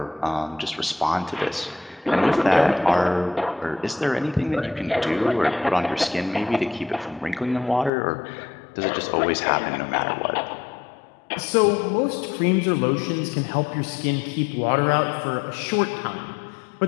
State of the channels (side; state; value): right; drops out; at 7.9 s